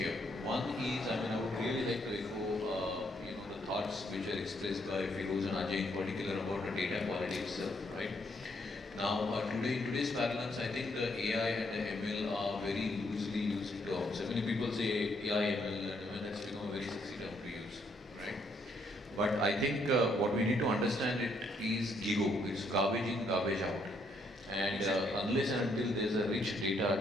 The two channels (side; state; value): both; normal; correlation 0.72